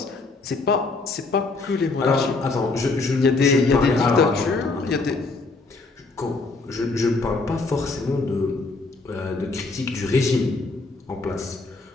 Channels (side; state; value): right; quieter; 3.7 dB